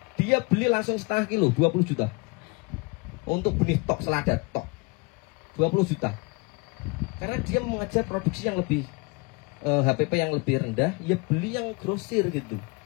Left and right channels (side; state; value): right; quieter; 27.4 dB